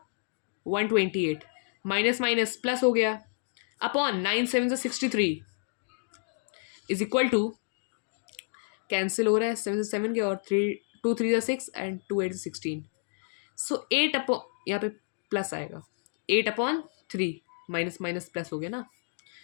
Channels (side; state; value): right; silent; digital silence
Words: 128 माइनस माइनस प्लस हो गया, upon 9 7 63 is equal to, cancel हो रहा है 7 7 के और 3 2 3 6 एंड 2 8 16, सो 8 अपॉन, यहाँ पे प्लस आएगा 8/3 माइनस माइनस प्लस हो गया ना,